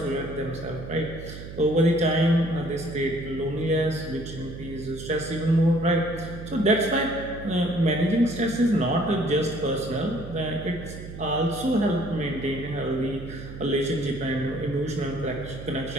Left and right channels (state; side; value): noise; right; hum, 11 dB below the sound